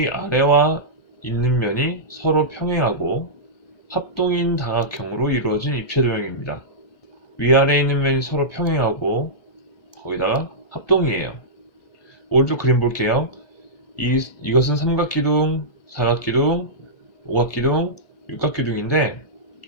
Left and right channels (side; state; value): right; late; 1.6 ms